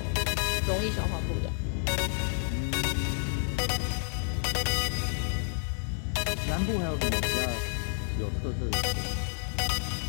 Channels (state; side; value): silent; right; digital silence